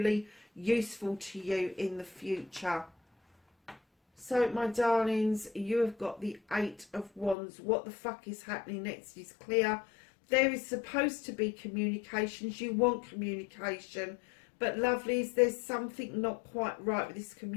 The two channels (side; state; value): right; drops out; at 7.4 s